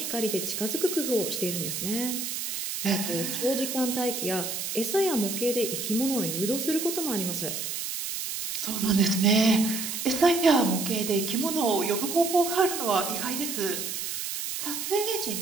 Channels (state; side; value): noise; right; hiss, 4 dB below the sound